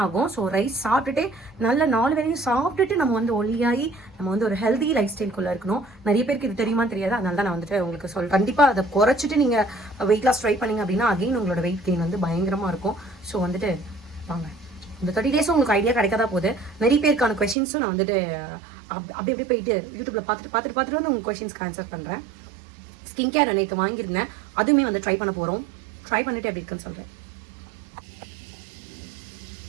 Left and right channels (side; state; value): left; drops out; at 17.6 s